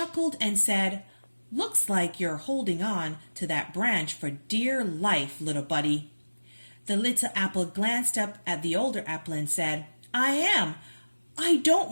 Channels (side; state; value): both; inverted; correlation -1.00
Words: and said, "Looks like you're holding on to that branch for dear life, little buddy." The little apple glanced up at the older apple and said, "I am. I don't